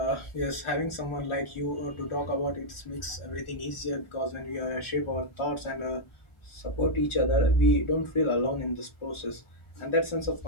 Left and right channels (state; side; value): late; right; 1.4 ms